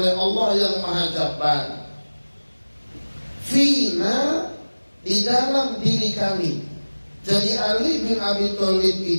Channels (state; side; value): inverted; both; correlation -1.00